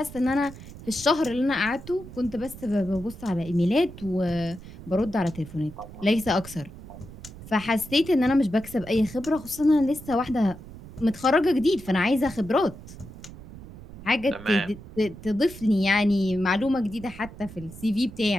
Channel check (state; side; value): noise; right; rumble, 15 dB below the sound